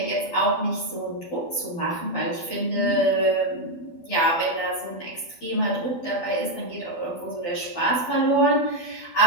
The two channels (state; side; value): late; right; 12 ms